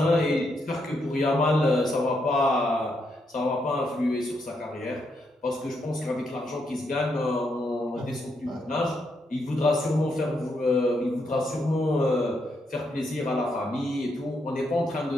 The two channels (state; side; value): normal; both; correlation 0.79